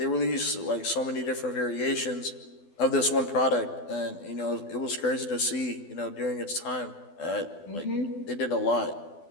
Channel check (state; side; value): late; right; 12 ms